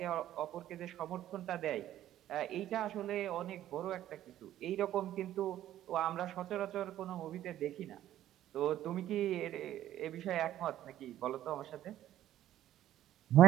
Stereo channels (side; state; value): left; quieter; 12.6 dB